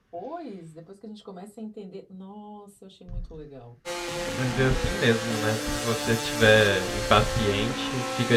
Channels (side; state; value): both; identical; correlation 1.00